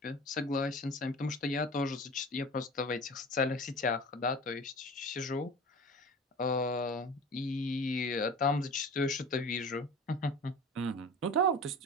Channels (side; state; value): both; normal; correlation 0.37